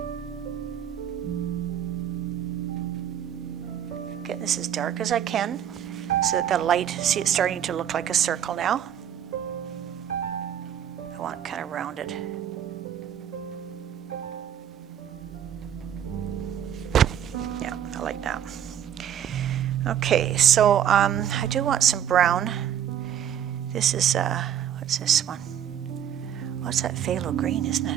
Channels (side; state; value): left; quieter; 9.7 dB